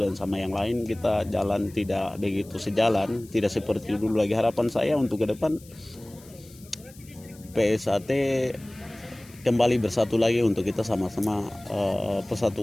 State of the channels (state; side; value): noise; left; hiss, 23 dB below the sound